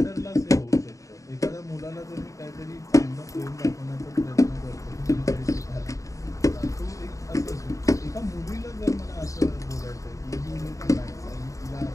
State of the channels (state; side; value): late; right; 0.16 ms